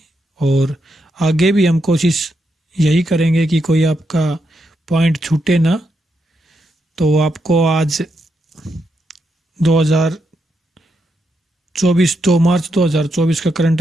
और आगे भी हम कोशिश यही करेंगे कि कोई आपका पॉइंट छूटे ना। तो आपको आज 2 मार्च 2024 का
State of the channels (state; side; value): normal; both; correlation 0.82